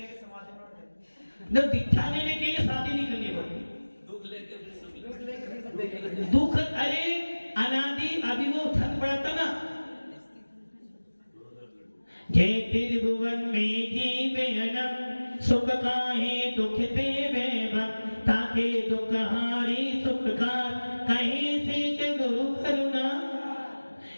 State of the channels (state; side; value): inverted; both; correlation -1.00